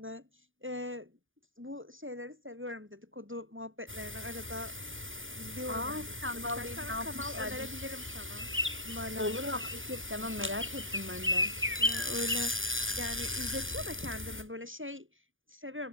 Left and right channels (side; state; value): left; late; 0.58 ms